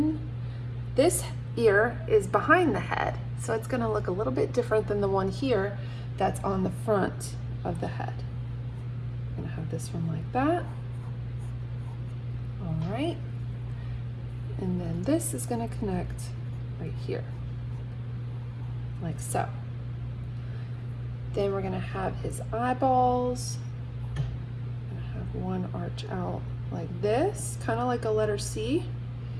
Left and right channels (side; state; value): both; identical; correlation 1.00